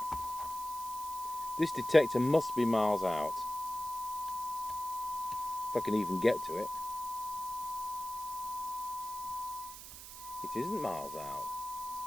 This detector must be miles out. If I can even get to it. It isn't miles out.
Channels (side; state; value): right; noise; hiss, 12 dB below the sound